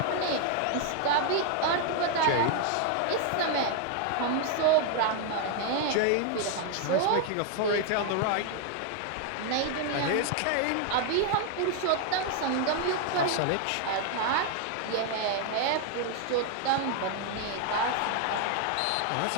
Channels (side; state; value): both; different; correlation 0.00